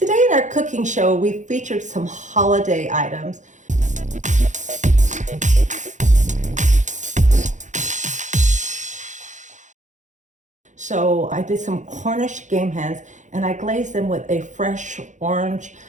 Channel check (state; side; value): late; left; 0.35 ms